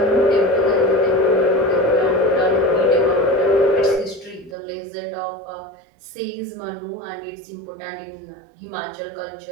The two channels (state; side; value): drops out; left; at 4.5 s